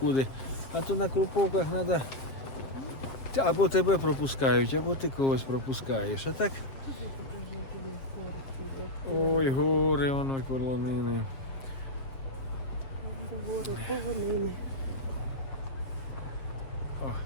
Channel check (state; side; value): late; right; 7.4 ms